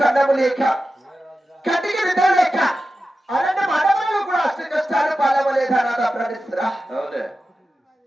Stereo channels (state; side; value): normal; both; correlation 0.93